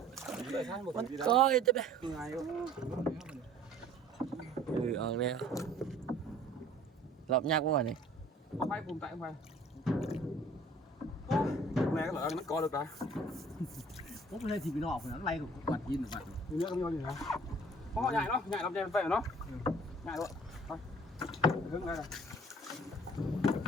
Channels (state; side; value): normal; both; correlation 0.51